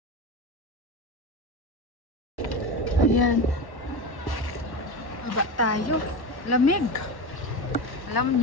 Ayan. Baba tayo. Lamig. Alam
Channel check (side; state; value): right; late; 1.1 ms